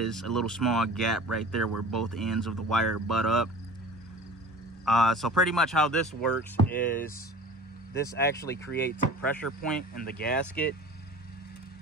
a little small gap right there where both ends of the wire butt up. So pretty much how this works is this actually creates a pressure point in the gasket.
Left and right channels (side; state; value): both; normal; correlation 0.41